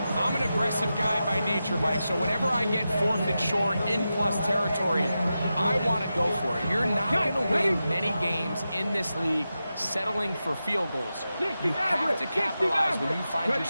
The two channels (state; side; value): inverted; both; correlation -0.91